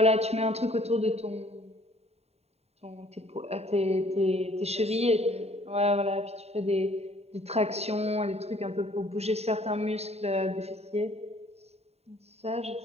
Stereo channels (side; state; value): left; late; 0.30 ms